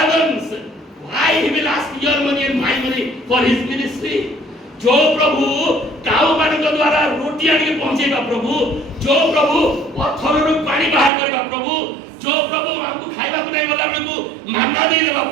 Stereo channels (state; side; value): drops out; left; at 11.1 s